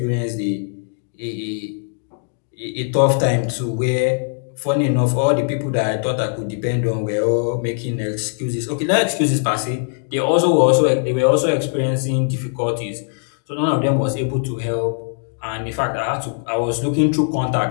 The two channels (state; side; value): silent; right; 63 dB below the other